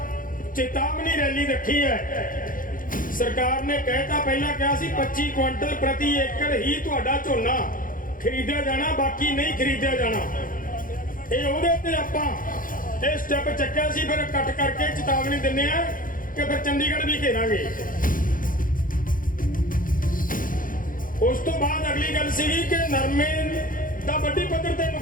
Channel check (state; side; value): late; right; 0.40 ms